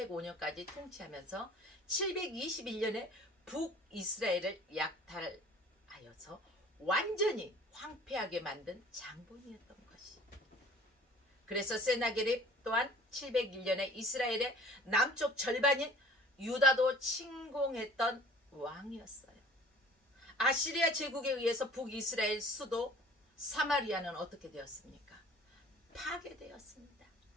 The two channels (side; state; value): both; normal; correlation 0.48